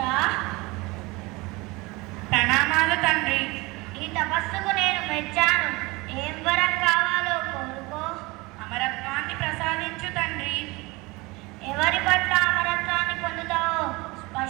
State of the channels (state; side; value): quieter; left; 23.6 dB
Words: ప్రణామాలు తండ్రి. ఈ తపస్సుకు నేను మెచ్చాను. ఏం వరం కావాలో కోరుకో. అమరత్వాన్ని ప్రసాదించు తండ్రి. ఎవరి పట్ల అమరత్వాన్ని పొందుతావో